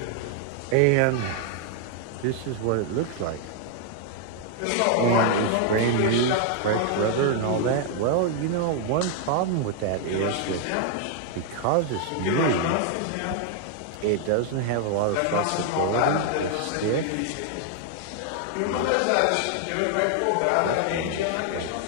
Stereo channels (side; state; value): both; different; correlation 0.00